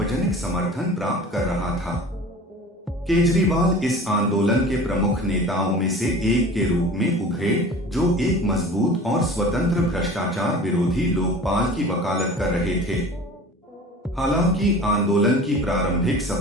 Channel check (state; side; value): normal; both; correlation 0.41